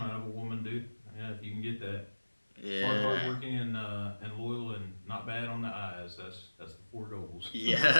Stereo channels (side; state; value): both; inverted; correlation -1.00